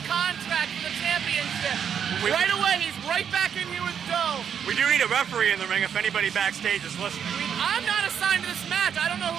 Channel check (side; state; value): left; quieter; 8.0 dB